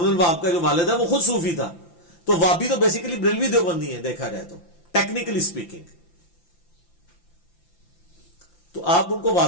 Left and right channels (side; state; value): right; late; 5.8 ms